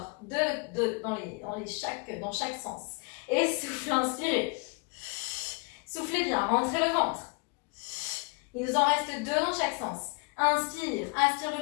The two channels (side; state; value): right; quieter; 31.4 dB